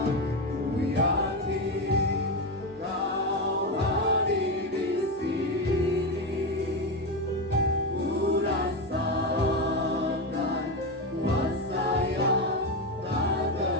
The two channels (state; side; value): normal; both; correlation 0.13